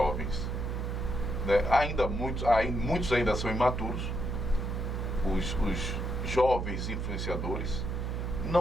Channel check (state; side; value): noise; right; hum, 2 dB below the sound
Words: Muitos ainda são imaturos, os jovens influenciadores,